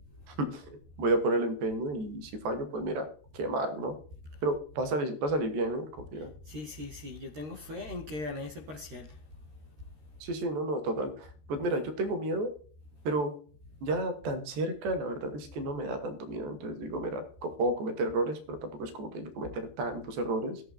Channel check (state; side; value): late; left; 13 ms